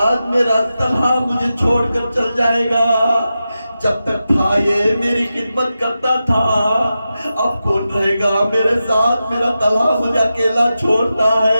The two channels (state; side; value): inverted; both; correlation -0.91